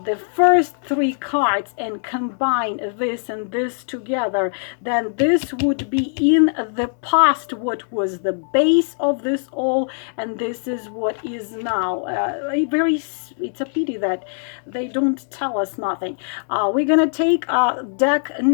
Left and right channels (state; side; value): silent; right; digital silence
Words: first three cards and combine this and this together, then this would be in the past what was the base of this all, and this is what is now. It's a pity that they don't tell us nothing. We're gonna take deck